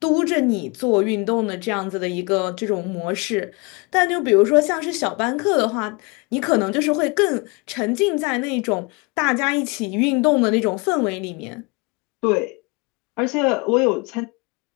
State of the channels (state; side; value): quieter; right; 29.0 dB